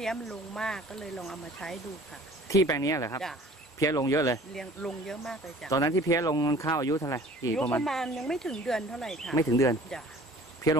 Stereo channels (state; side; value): normal; both; correlation 0.49